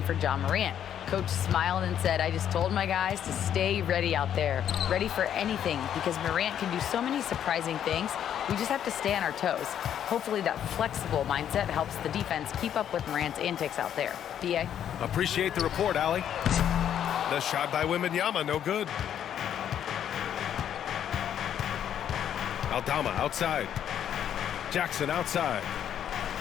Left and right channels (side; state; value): right; quieter; 9.7 dB